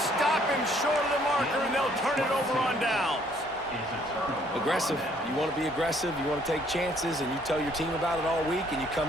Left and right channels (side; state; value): both; normal; correlation 0.64